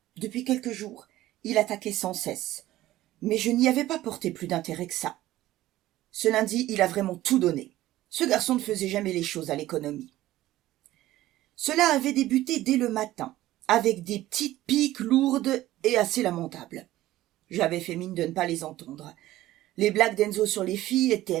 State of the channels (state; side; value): quieter; left; 15.4 dB